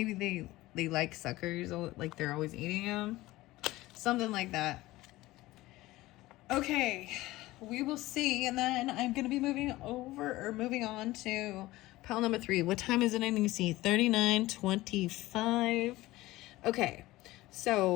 they like suckers, like they're always eating them. Something like that. Okay, we will see. And then I'm going to be moving on to pile number 3. What time is it? I need to see. 39:25. Okay, so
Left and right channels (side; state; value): right; quieter; 18.2 dB